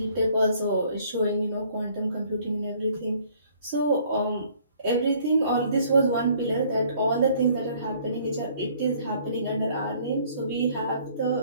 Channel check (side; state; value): both; inverted; correlation -0.59